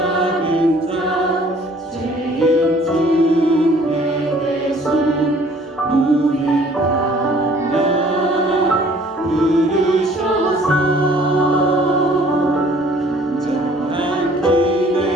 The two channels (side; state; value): both; normal; correlation 0.55